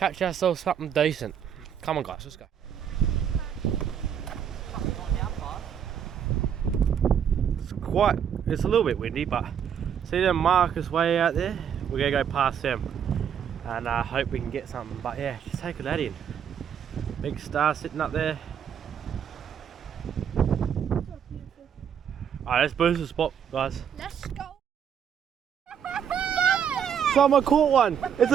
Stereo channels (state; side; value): quieter; left; 8.3 dB